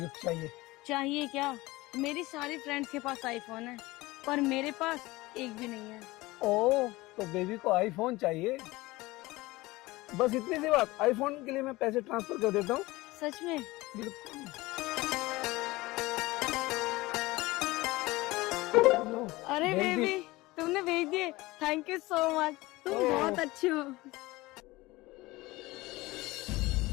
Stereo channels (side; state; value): right; quieter; 20.4 dB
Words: चाहिए? चाहिए क्या? मेरी सारी फ्रेंड्स के पास आईफोन है, पर मेरे पास एक भी नहीं है। ओह, तो बेबी को आईफोन चाहिए? बस इतनी सी बात। आईफोन के लिए मैं पैसे ट्रांसफर कर देता हूँ। सच में? बिल्कुल। अरे भेज दी। बेबी, तुमने भेज दिए, थैंक यू सो मच। तुम बहुत अच्छे हो।